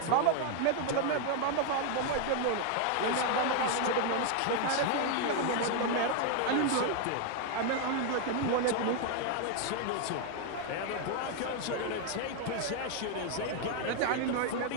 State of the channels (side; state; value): both; different; correlation 0.00